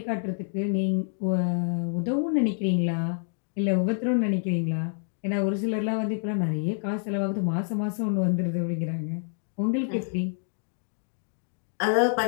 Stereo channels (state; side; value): silent; right; digital silence